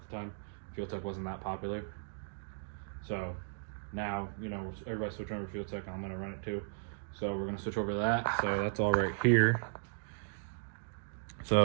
the time. Fuel tech wasn't that popular, so now, you know, everybody's switching over to fuel tech, and I'm gonna run it too. So we're gonna switch over to that. So that's all right here.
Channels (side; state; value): left; silent; digital silence